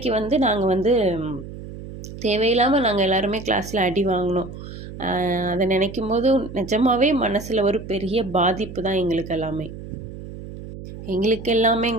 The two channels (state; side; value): noise; right; hum, 12 dB below the sound